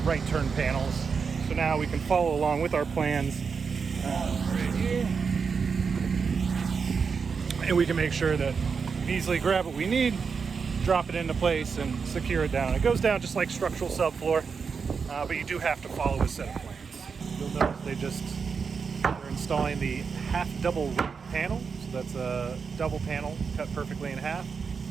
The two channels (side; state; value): left; quieter; 5.6 dB